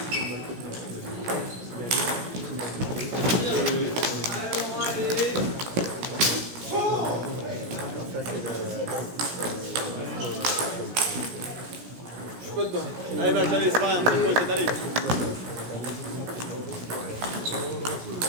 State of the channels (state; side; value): late; left; 17 ms